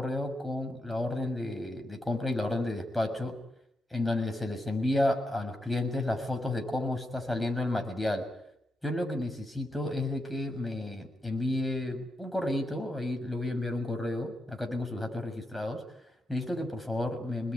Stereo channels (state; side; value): normal; both; correlation 0.84